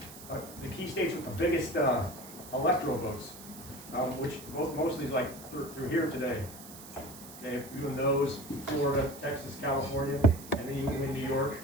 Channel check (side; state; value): right; noise; hiss, 16 dB below the sound